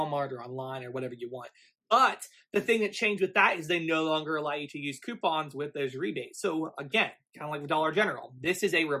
or online or whatever you want. But the thing that changed with that is they no longer allow you to use coupons with those rebates. So again, kind of like with Dollar General, this is a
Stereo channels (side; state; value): both; identical; correlation 1.00